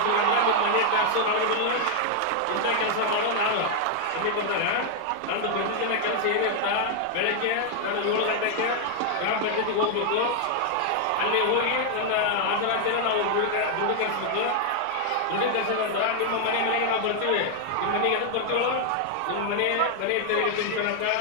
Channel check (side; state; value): both; different; correlation 0.00